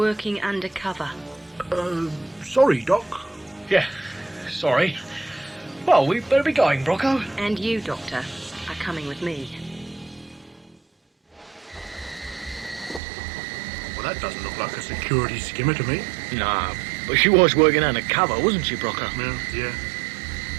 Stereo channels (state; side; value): drops out; left; at 13.0 s